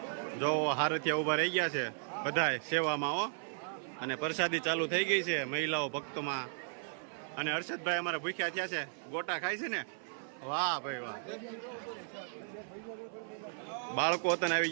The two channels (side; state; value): left; silent; 54 dB below the other